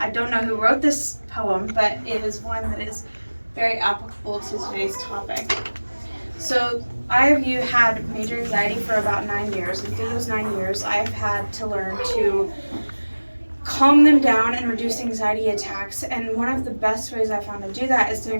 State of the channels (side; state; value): both; inverted; correlation -1.00